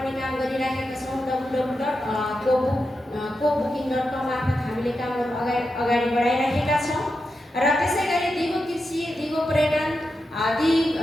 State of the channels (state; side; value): normal; both; correlation 0.88